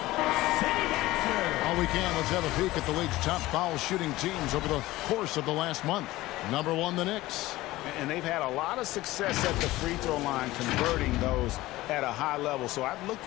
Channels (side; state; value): right; quieter; 17.7 dB